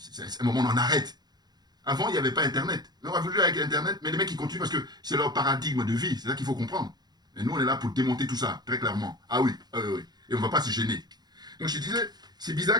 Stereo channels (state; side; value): late; left; 0.20 ms